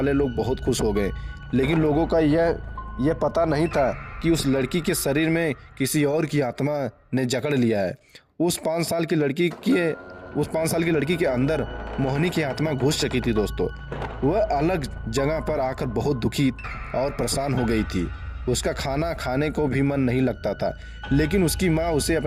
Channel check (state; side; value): identical; both; correlation 1.00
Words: लोग बहुत खुश हो गए। लेकिन लोगों का यह पता नहीं था कि उस लड़की के शरीर में किसी और की आत्मा ने जकड़ लिया है। उस 5 साल की लड़की के अंदर मोहिनी की आत्मा घुस चुकी थी। दोस्तों वह अलग जगह पर आकर बहुत दुखी और परेशान हो गई थी। उसका खाना खाने को भी मन नहीं लगता था, लेकिन उसकी माँ उसे